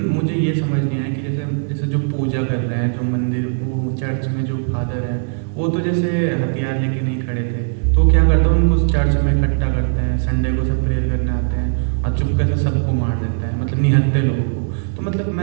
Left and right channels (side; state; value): left; silent; digital silence